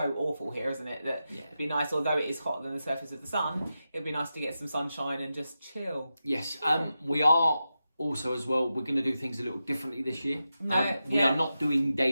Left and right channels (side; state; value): both; inverted; correlation -0.90